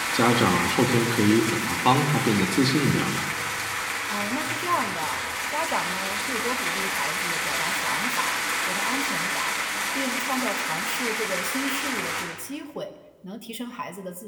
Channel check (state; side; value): identical; both; correlation 1.00